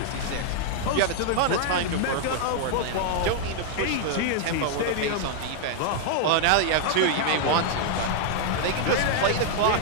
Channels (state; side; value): different; both; correlation 0.00